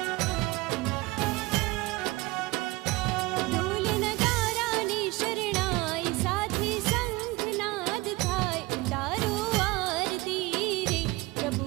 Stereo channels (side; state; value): left; quieter; 21.8 dB